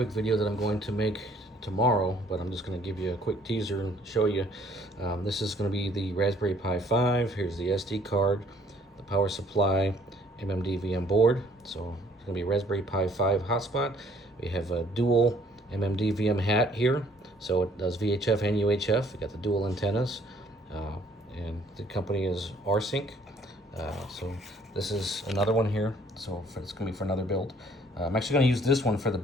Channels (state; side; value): normal; both; correlation 0.61